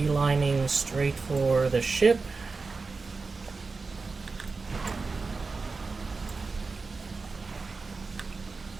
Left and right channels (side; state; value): left; quieter; 4.2 dB